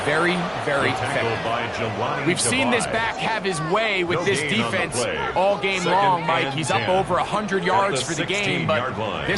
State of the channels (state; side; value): identical; both; correlation 1.00